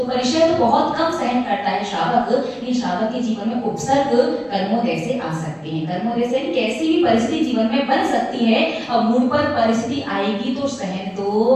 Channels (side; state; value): both; identical; correlation 1.00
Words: परिशह तो बहुत कम सहन करता है श्रावक, लेकिन श्रावक के जीवन में उपसर्ग कर्मोदय से आ सकते हैं। कर्मोदय से कैसी भी परिस्थिति जीवन में बन सकती है, अब मूड पर परिस्थिति आएगी तो सहन तो